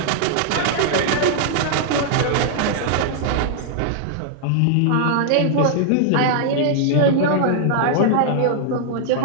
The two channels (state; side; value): different; both; correlation -0.01